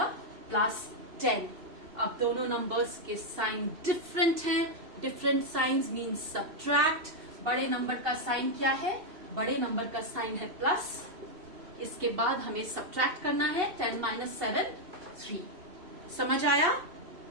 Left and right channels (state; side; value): late; left; 2.7 ms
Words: +10। अब दोनों नंबर्स के साइन डिफरेंट हैं। Different science means subtract. बड़े नंबर का साइन क्या है, बड़े नंबर का साइन है प्लस। इसके बाद हमें सब्ट्रैक्ट करना है। 10 - 7 3। समझ आया?